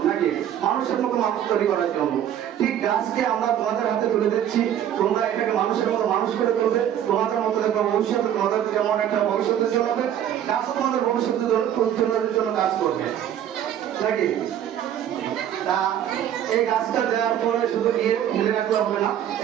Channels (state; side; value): quieter; left; 10.4 dB